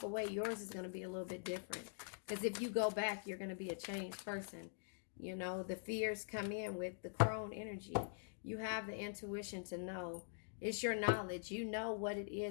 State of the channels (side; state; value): right; silent; digital silence